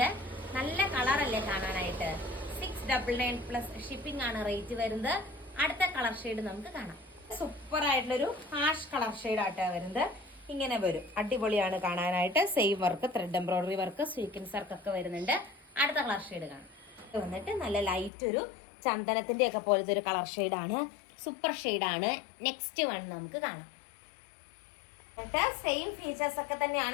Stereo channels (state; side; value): drops out; right; at 18.1 s